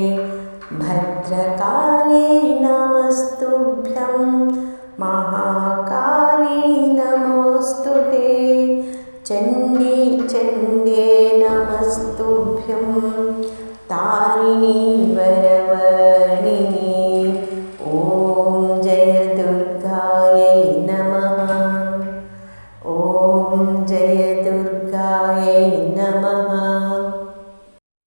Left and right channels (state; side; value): inverted; both; correlation -1.00